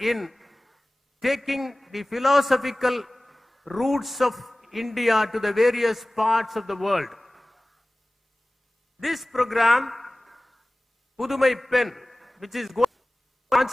in taking the philosophical roots of India to the various parts of the world. This program, Pudumai Pen, which is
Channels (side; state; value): both; normal; correlation 0.98